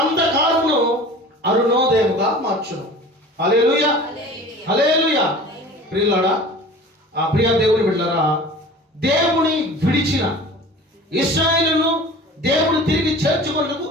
అంధకారమును అరుణోదయముగా మార్చును. హల్లెలూయా, హల్లెలూయా. ప్రియులారా, ఆ ప్రియ దేవుని బిడ్డలారా, దేవుని విడిచిన ఇశ్రాయేలును దేవుడు తిరిగి చేర్చుకొనుటకు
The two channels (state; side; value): normal; both; correlation 0.41